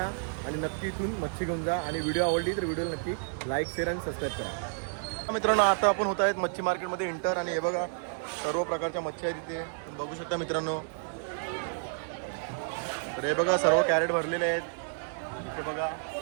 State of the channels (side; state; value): left; silent; digital silence